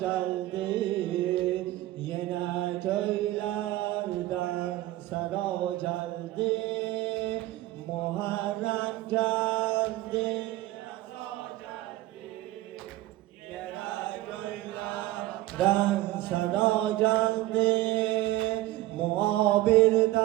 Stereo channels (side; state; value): left; quieter; 16.6 dB